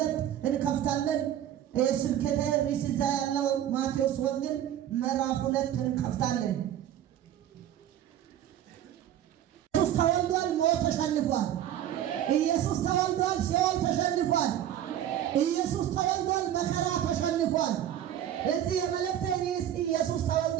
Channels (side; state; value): left; quieter; 11.2 dB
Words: እንከፍታለን። ስብከተ ርዕስ እዛ ያለው ማቴዎስ ወንጌል ምዕራፍ 2 እንከፍታለን። ኢየሱስ ተወልዷል፣ ሞት ተሸንፏል። ኢየሱስ ተወልዷል፣ ሲኦል ተሸንፏል። ኢየሱስ ተወልዷል፣ መከራ ተሸንፏል። እዚህ የመልእክቴ ርዕስ ኢየሱስ